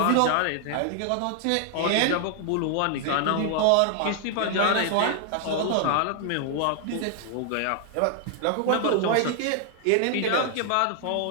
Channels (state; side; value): different; both; correlation 0.00